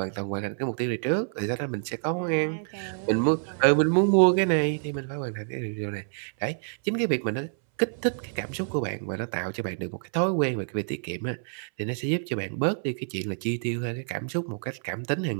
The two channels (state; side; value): silent; left; 60 dB below the other